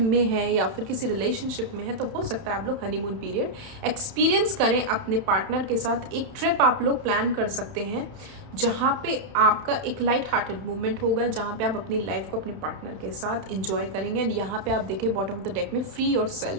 हैं, या फिर किसी रिलेशनशिप में है, तो हो सकता है आप लोग हनीमून पीरियड एक्सपीरियंस करें अपने पार्टनर के साथ। एक ट्रिप आप लोग प्लान कर सकते हैं जहाँ पे आपका एक लाइट हार्टेड मूवमेंट होगा, जहाँ पे आप अपनी लाइफ को अपने पार्टनर के साथ एंजॉय करेंगे। एंड यहाँ पे आप देखें बॉटम ऑफ द डेक में फ्री योर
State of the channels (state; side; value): late; left; 31 ms